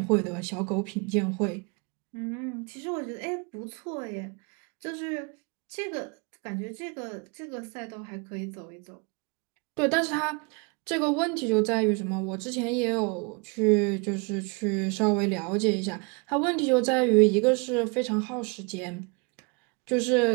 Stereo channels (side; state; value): left; quieter; 31.5 dB